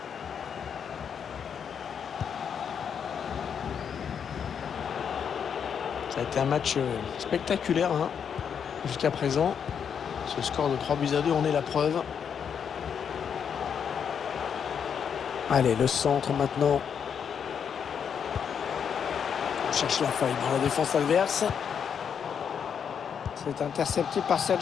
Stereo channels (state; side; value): quieter; right; 7.4 dB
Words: Ça a été un match spectaculaire hein, jusqu'à présent. Ce score de 3-2 en est la preuve. Allez, le centre maintenant. On cherche la faille dans la défense adverse. C'est intercepté par